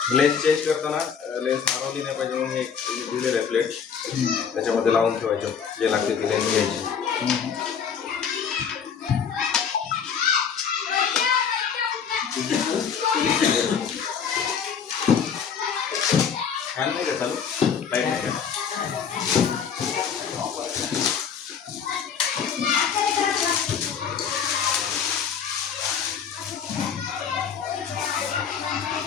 लेन्स चेंज करताना लेन्स हरवली नाही पाहिजे म्हणून एक दिलेलं आहे प्लेट त्याच्यामध्ये लावून ठेवायचं जे लागते ती लेन्स घ्यायची. फॅन नाही का चालू लाईट नाही का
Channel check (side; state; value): right; quieter; 7.0 dB